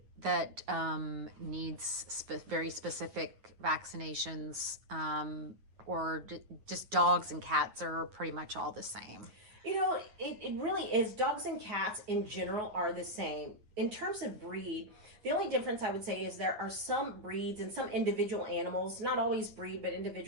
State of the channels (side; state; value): left; late; 9.5 ms